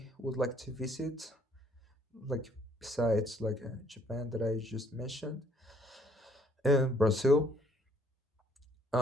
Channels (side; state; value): both; normal; correlation 0.63